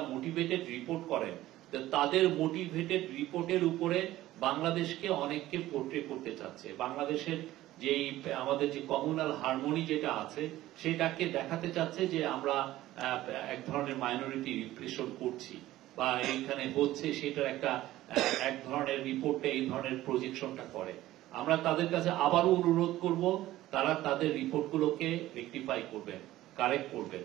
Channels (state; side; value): quieter; left; 15.4 dB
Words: মোটিভেটেড রিপোর্ট করেন, তাদের মোটিভেটেড রিপোর্টের উপরে বাংলাদেশকে অনেককে পোর্ট্রে করতে চাচ্ছে। বাংলাদেশের যেই আমাদের যে কমিউনাল হারমোনি যেটা আছে সেটাকে দেখাতে চাচ্ছে যে আমরা এক ধরনের মাইনরিটি রিপ্রেশন করছি বা এইখানে হচ্ছে, সেটার একটা এক ধরনের রিপোর্টে এই ধরনের প্রজেকশনটা করে। আমরা তাদের কাছে আবারও অনুরোধ করব তারা তাদের রিপোর্টগুলোকে রেকটিফাই করবেন, কারেক্ট করবেন।